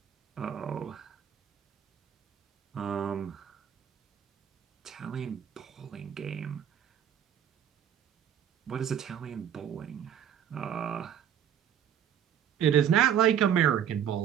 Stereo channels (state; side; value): quieter; left; 9.1 dB